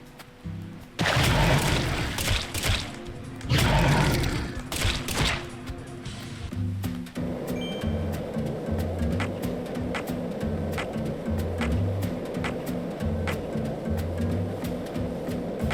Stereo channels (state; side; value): identical; both; correlation 1.00